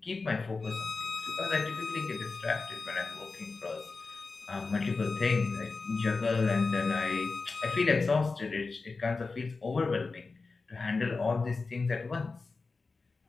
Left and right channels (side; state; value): right; quieter; 4.1 dB